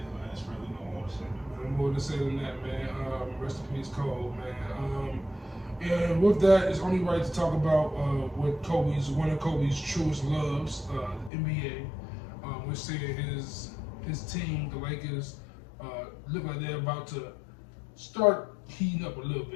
man, it's really no more to say. No more to say than that, man. Rest in peace, Kobe, man. And with that, it's only right to talk about one of Kobe's truest loves, the NBA. We're seeing his team, the Lakers, look like they're about to start heating up a little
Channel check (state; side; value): drops out; right; at 11.3 s